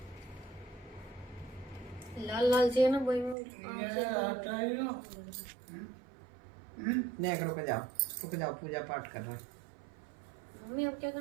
लाल लाल से ना वही नहीं रुक जाओ पूजा पाठ कर रहा है। मम्मी अब क्या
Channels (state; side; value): drops out; left; at 3.4 s